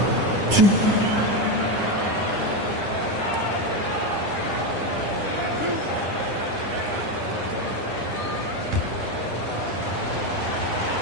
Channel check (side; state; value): left; late; 9.9 ms